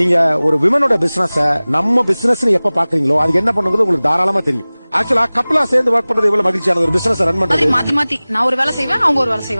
ஒரு விமனோட பிசினஸ் நம்ம பிசினஸ் எப்ப பாக்குறீங்களோ அதுக்கு என்ன பண்ணுங்கிறது உங்களுக்கு தாராளமா தெரியும். ஆக்சுவலா கப்புலா சேர்ந்து ஒர்க் பண்றது எவ்வளவு மகிழ்ச்சியான ஒரு பிசினஸ் ரன் பண்றது. மாத்தி மாத்தி நான் ஒரு வேலை செய்வேன், அவங்க ஒரு வேலை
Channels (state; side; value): inverted; both; correlation -0.99